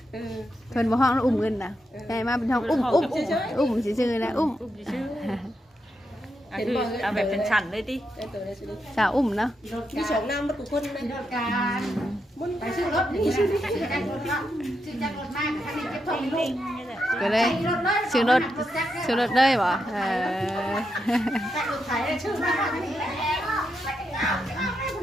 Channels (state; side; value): normal; both; correlation 0.84